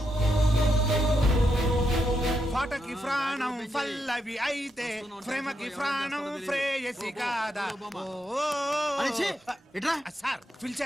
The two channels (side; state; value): both; normal; correlation 0.82